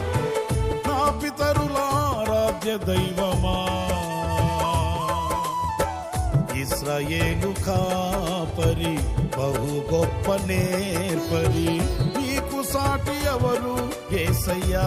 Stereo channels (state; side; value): identical; both; correlation 1.00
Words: నా పితరుల ఆరాధ్య దైవమా. ఇశ్రాయేలు కాపరి, బహు గొప్ప నేర్పరి, నీకు సాటి ఎవరు యేసయ్యా.